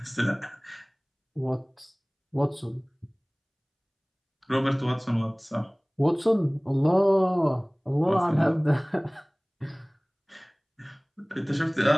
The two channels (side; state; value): both; identical; correlation 1.00